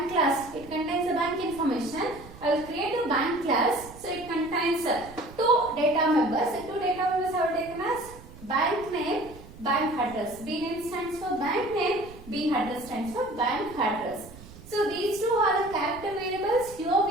class. It contains the bank information. I will create a bank class. So it contains two data members. The two data members are taken as bank name, bank address. B name stands for bank name, B address stands for bank address. So these two are the character variables. Here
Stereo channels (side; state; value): right; noise; rumble, 18 dB below the sound